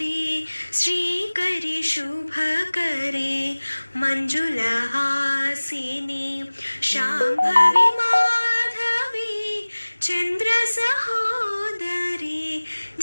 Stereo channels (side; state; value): both; inverted; correlation -1.00